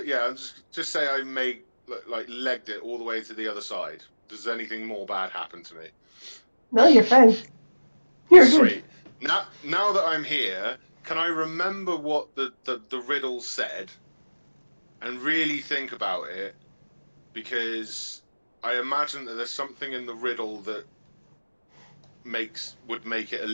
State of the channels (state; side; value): inverted; both; correlation -1.00